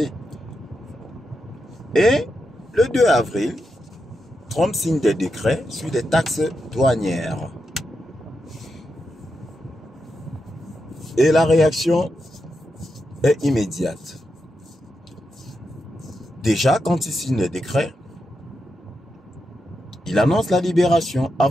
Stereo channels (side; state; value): both; normal; correlation 0.86